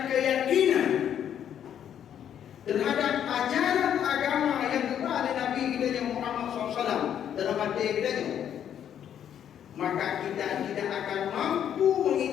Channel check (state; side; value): quieter; right; 9.5 dB